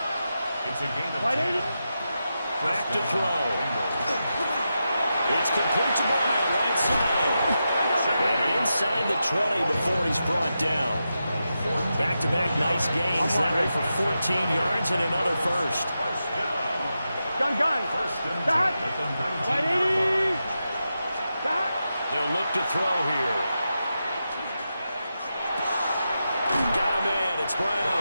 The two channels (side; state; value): both; inverted; correlation -0.89